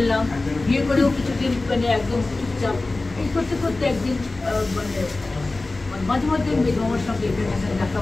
বিয়ে করেও কিছুদিন মানে একদম চুপচাপ এই করতে করতে একদিন মানে মাঝে মাঝে মামার সঙ্গে দেখা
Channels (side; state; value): right; quieter; 3.2 dB